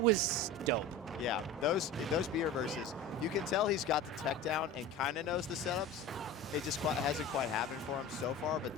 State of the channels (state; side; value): normal; both; correlation 0.34